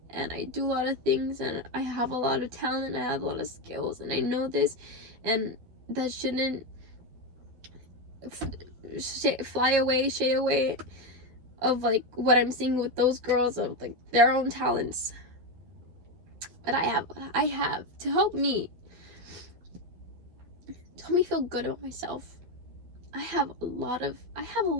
and I do a lot of things, and I have a lot of talent, I have a lot of skills, and I know this, and that shouldn't shy away of like what I'm seeing with those girls, of like their own talents. But I have to help me feel good about myself. I have a lot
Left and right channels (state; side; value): late; left; 12 ms